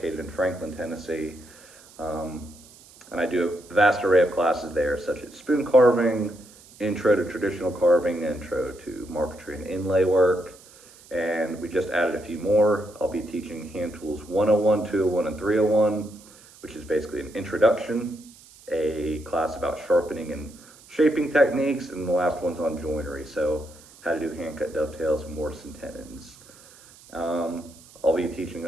in Franklin, Tennessee. And I do a vast array of classes there, such as spoon carving, intro to traditional carving, intro to marquetry and inlay work, and we just added a few more. I'll be teaching hand tools 101, 201, and 301, which is basically an introduction, a class about sharpening and shaping techniques, and the last one's on joinery, so how to do hand cut dovetails and mortise and tenons. I'll be teaching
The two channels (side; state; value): right; noise; hiss, 23 dB below the sound